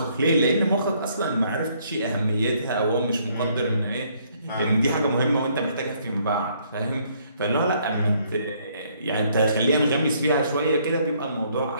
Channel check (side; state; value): both; inverted; correlation -0.67